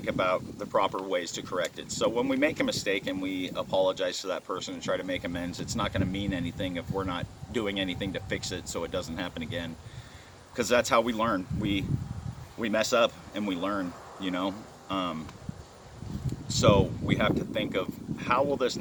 about the proper ways to correct it. So when we make a mistake and we apologize to that person and try to make amends, it's not going to mean anything if we're not doing anything to fix it so it doesn't happen again. Because that's how we learn. We mess up and we learn, you know. So we have to think of, how will this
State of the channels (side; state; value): both; identical; correlation 1.00